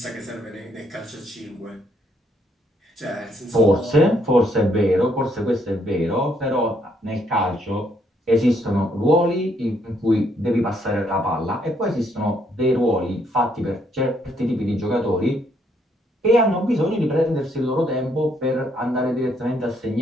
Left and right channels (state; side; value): normal; both; correlation 0.71